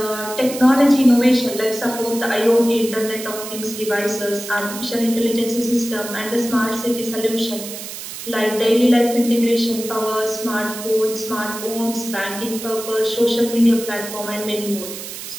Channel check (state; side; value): noise; right; hiss, 10 dB below the sound